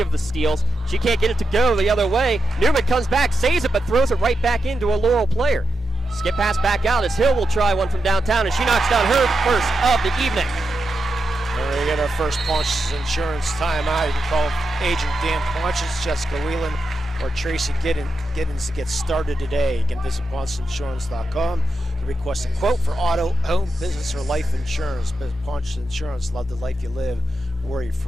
the steals. She can't get it to go the other way. Newman comes back, saves it, but throws it right back into a Laurel player. Skip pass back out as Hill will try one from downtown, and she knocks down her first of the evening. We're going to get our first Pontius Insurance timeout. You can call Agent Dan Pontius, Jessica Whelan, or Tracy Giddens to get started today. You can visit PontiusInsurance.com to request a quote for auto, home, business, or life insurance. Pontius Insurance, love the life you live, worry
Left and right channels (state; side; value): normal; both; correlation 0.86